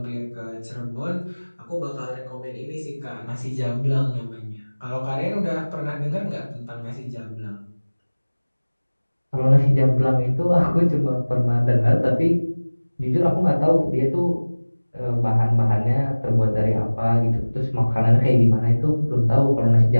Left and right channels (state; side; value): inverted; both; correlation -1.00